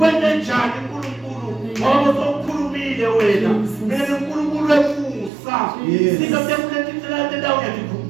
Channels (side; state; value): left; drops out; at 5.3 s